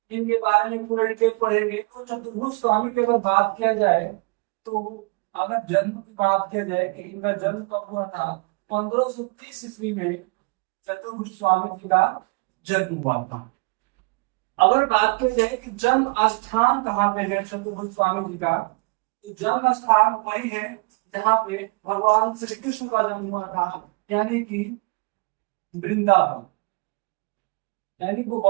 इनके बारे में पूरे डिटेल पढ़ेंगे। तो चतुर्भुज स्वामी की अगर बात किया जाए, तो अगर जन्म की बात किया जाए कि इनका जन्म कब हुआ था, 1530 ईस्वी में चतुर्भुज स्वामी जी का जन्म हुआ था। अगर बात की जाए कि जन्म स्थान कहाँ पे है चतुर्भुज स्वामी जी का, तो जन्म स्थान वही है जहाँ पे भगवान श्री कृष्ण का जन्म हुआ था, यानी कि वृंदावन, यानी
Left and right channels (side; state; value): left; quieter; 30.1 dB